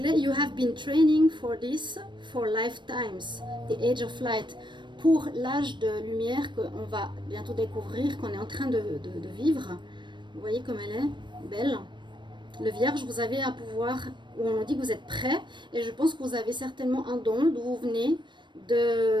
you have been training for this for lifetimes, the age of light. Pour l'âge de lumière qu'on va bientôt découvrir, qu'on est en train de vivre. Vous voyez comme elle est belle. Le vierge, vous avez un pouvoir où on dit que vous êtes prêt. Et je pense que vous avez certainement un don d'où vous venez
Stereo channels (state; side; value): late; left; 0.22 ms